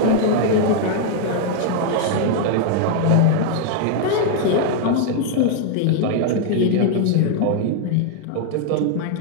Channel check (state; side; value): different; both; correlation 0.00